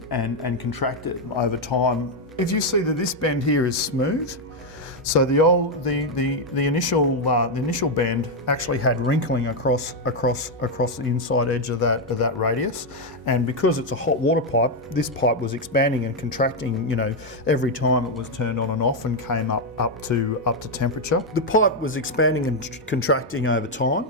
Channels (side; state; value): both; normal; correlation 0.02